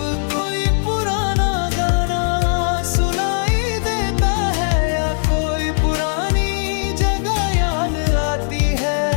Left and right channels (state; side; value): silent; right; digital silence